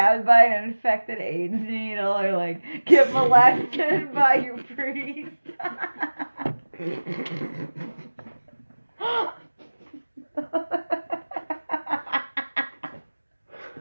by an infected AIDS needle, or like get molested by your priest.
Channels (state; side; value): inverted; both; correlation -1.00